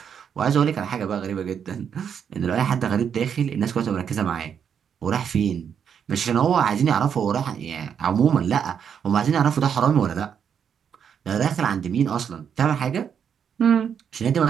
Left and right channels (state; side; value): quieter; left; 7.7 dB